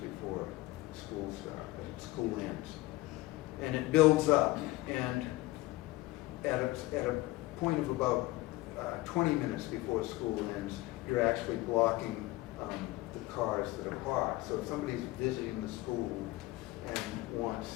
school ends. And it builds up, and at a point of about 20 minutes before school ends, you're actually blocking the cars that are parked. So if somebody's visiting the school and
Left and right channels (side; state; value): right; quieter; 19.4 dB